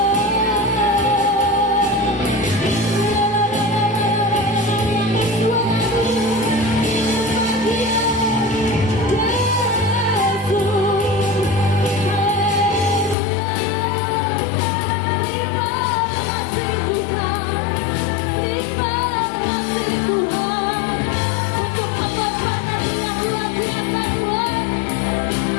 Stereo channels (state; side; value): drops out; right; at 13.2 s